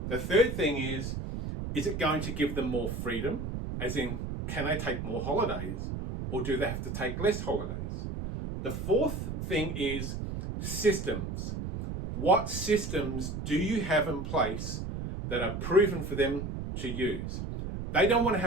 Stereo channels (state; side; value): noise; right; rumble, 5 dB below the sound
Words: The third thing is it going to give them more freedom? As in, can they take more holidays? Or do they have to take less holidays? The fourth thing is systems. What systems do you have in place that are proven for them to use? They don't want to